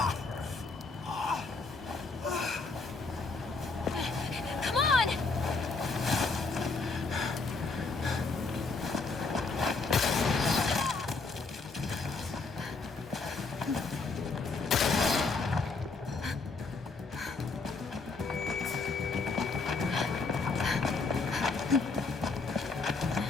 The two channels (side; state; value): right; quieter; 4.1 dB